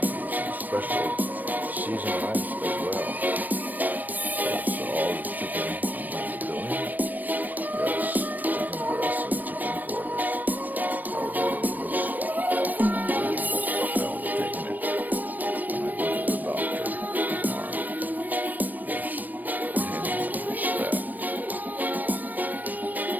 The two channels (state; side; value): late; left; 0.086 ms